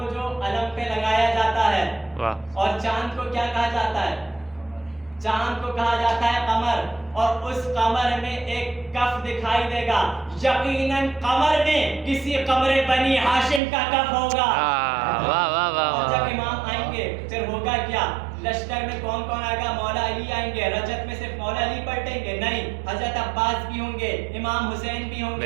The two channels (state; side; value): drops out; left; at 13.6 s